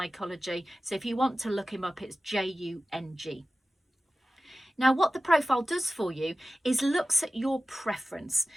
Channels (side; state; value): both; normal; correlation 0.96